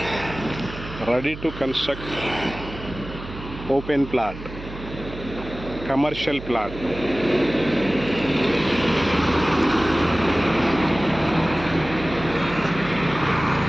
Ready to construct open plot, commercial plot.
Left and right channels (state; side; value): noise; right; hum, 12 dB below the sound